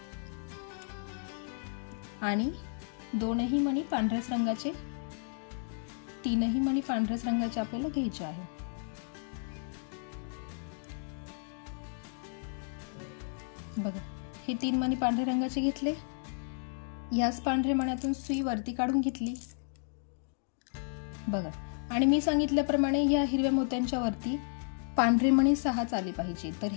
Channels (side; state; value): right; silent; digital silence